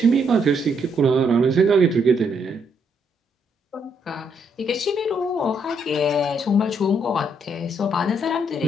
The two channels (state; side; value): normal; both; correlation 0.73